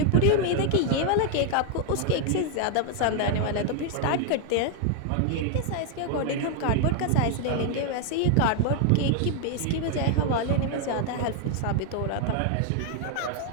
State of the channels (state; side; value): different; both; correlation 0.00